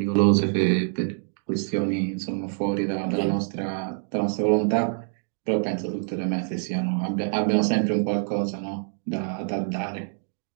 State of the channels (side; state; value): left; silent; 56 dB below the other